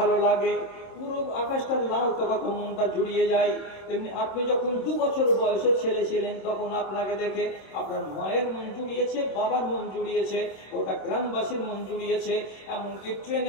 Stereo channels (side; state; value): right; late; 26 ms